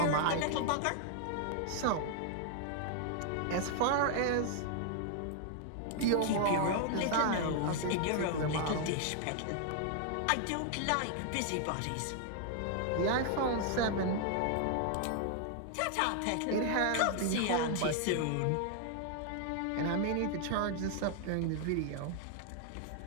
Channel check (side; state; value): both; different; correlation 0.00